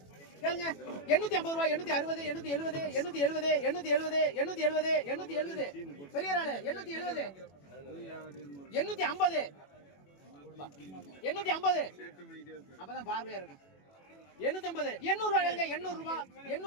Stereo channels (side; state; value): right; late; 21 ms